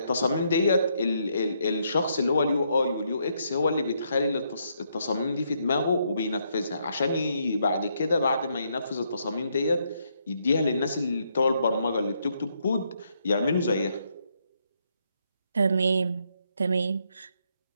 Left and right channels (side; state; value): both; inverted; correlation -0.75